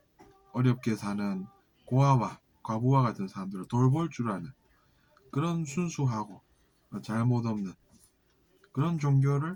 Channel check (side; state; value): both; identical; correlation 1.00